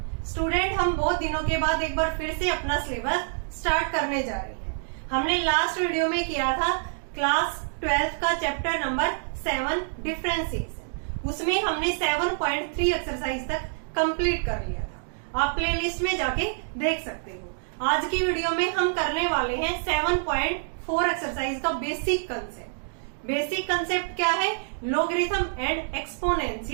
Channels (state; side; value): silent; left; digital silence